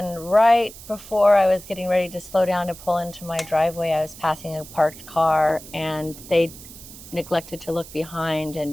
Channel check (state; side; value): noise; right; hiss, 17 dB below the sound